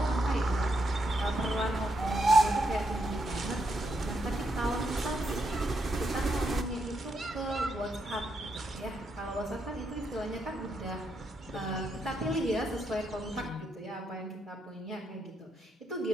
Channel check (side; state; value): both; normal; correlation 0.80